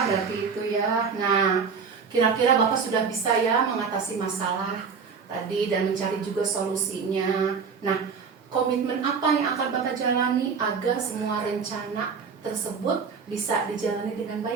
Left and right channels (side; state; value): left; quieter; 5.7 dB